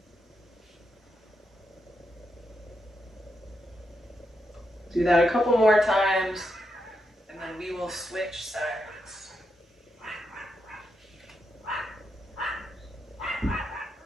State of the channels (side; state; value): both; normal; correlation 0.83